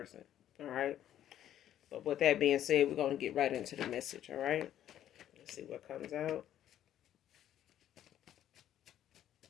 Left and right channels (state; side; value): quieter; right; 11.4 dB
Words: All right? But with that being said, we're going to get right into the message, all right? Let's see what comes out.